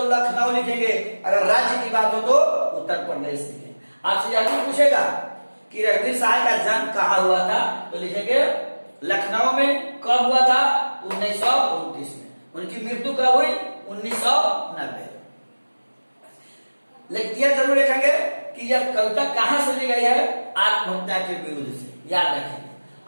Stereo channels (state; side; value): inverted; both; correlation -1.00